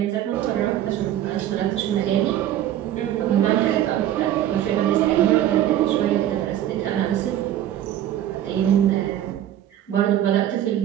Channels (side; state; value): left; quieter; 11.9 dB